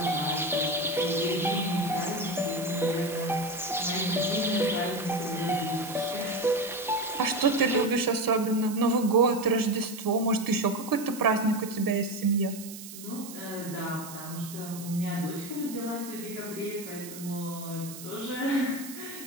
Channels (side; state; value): right; noise; hiss, 13 dB below the sound